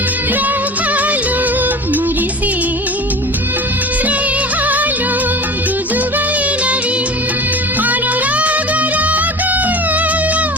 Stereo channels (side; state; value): both; normal; correlation 0.36